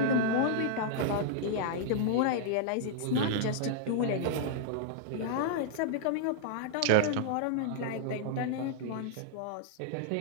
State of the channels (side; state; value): both; different; correlation -0.01